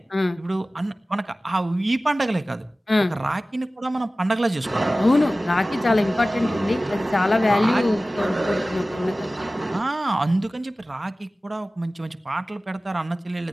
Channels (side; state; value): both; normal; correlation 0.97